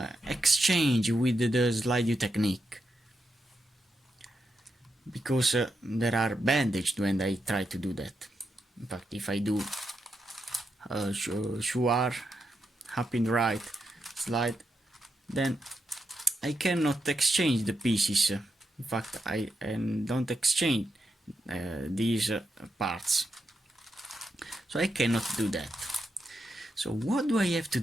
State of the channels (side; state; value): both; normal; correlation 0.84